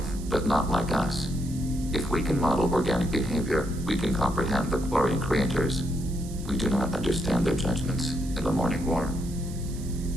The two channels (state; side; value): noise; right; hiss, 17 dB below the sound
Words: but not like us. If we can model organic behavior, we can comprehend the Quarian creators. We do not understand their judgments in the Morning War.